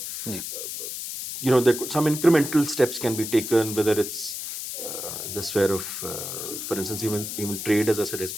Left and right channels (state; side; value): noise; left; hiss, 6 dB below the sound